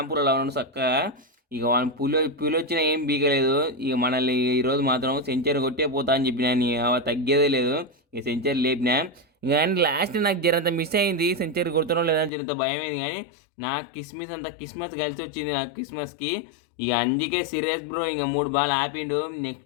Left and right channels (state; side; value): drops out; right; at 12.3 s